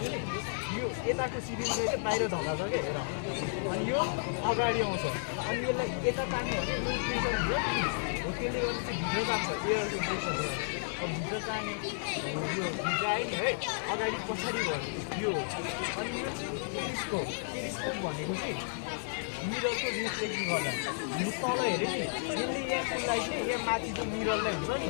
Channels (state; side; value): silent; right; 56 dB below the other